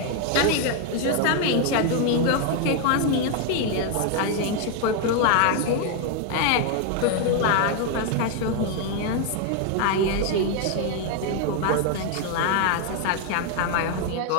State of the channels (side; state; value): both; different; correlation 0.00